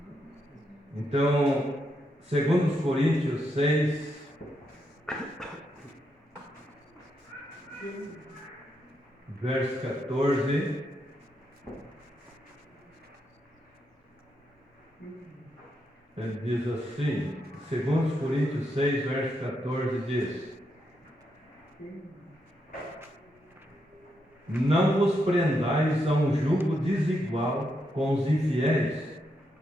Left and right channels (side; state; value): both; normal; correlation 0.81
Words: Então, segundo os Coríntios 6, verso 14, ele diz assim, segundo os Coríntios 6, verso 14, diz: não vos prendais a um jugo desigual com os infiéis,